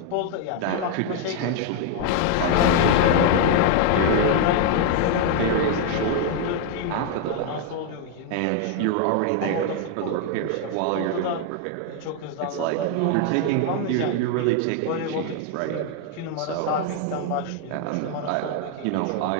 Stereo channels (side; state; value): both; different; correlation 0.01